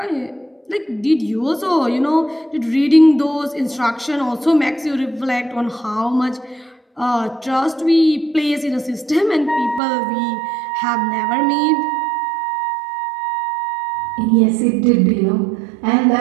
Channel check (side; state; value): left; drops out; at 9.8 s